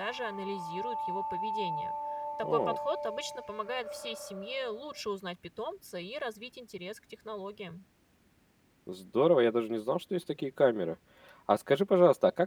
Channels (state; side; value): identical; both; correlation 1.00